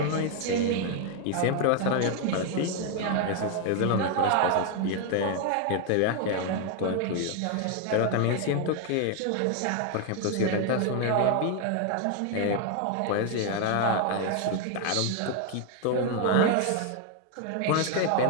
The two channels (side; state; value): both; different; correlation 0.00